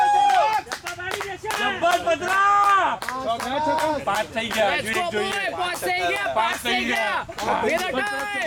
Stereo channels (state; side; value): identical; both; correlation 1.00